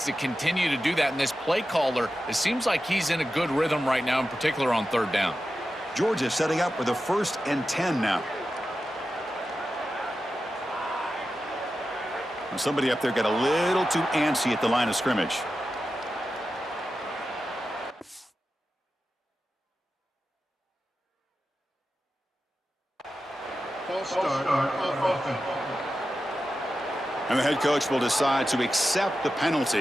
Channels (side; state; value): both; normal; correlation 0.92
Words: to continue to do that. And this play caller, it seems like he's in a good rhythm right now, in particular on 3rd down. Georgia setting up with a 1st and 10 now. And somebody up there got a little too antsy at the line of scrimmage. And the head coach will decide to accept the